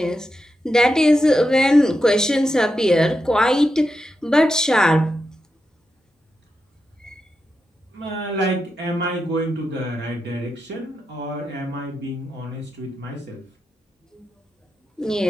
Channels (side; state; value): both; normal; correlation 0.87